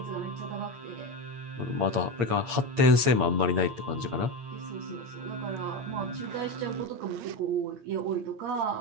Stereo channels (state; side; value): late; left; 8.7 ms